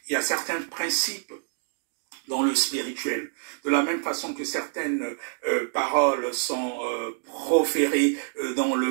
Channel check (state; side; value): silent; left; digital silence